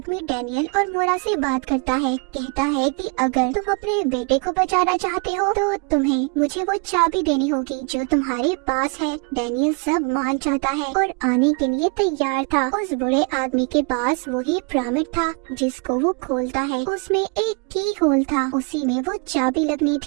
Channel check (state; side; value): quieter; left; 35.1 dB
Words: डैनियल और मोरा से बात करता है। कहता है कि अगर तुम अपने बेटे को बचाना चाहते हो तो तुम्हें मुझे वो चाबी देनी होगी जो तुम्हारे पास है। डैनियल सब मान जाता है और आने के लिए तैयार था। उस बूढ़े आदमी के पास वही पिरामिड था जिसको वो खोलता है। उसमें एक की होल था, उसी में वो चाबी लगनी